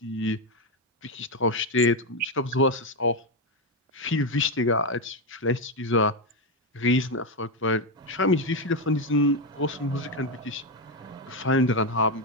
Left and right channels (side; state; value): both; normal; correlation 0.08